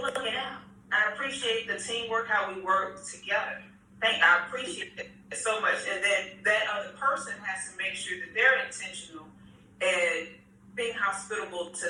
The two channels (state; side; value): identical; both; correlation 1.00